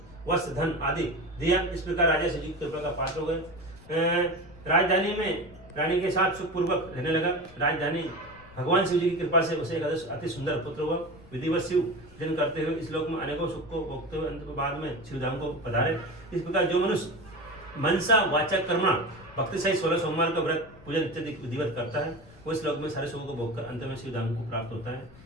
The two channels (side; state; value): left; noise; rumble, 21 dB below the sound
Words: वस्त्र धन आदि दिया। इस प्रकार राजा शिव जी की कृपा का पात्र हो गए। राजधानी में रानी के साथ सुखपूर्वक रहने लगा। राजधानी भगवान शिव जी की कृपा से उसे एक अति सुंदर पुत्र हुआ। विधिवत शिव जन करते हुए इस लोक में अनेकों सुख को भोगते हुए अंत के बाद में शिवधाम को पधारे। इस प्रकार जो मनुष्य मनसा वाचा कर्मणा भक्ति सहित 16 सोमवार का व्रत पूजन इत्यादि विधिवत करता है, वो इस लोक में सारे सुखों को भोगकर अंत में शिवधाम को प्राप्त होता है।